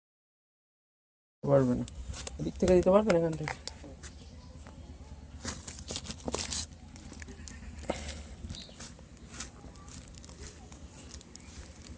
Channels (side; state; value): both; identical; correlation 1.00